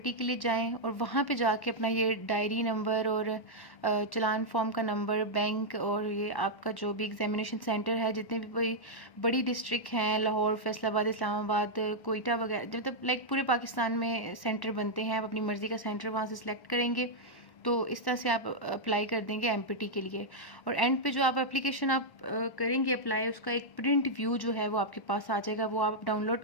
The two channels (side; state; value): right; late; 1.1 ms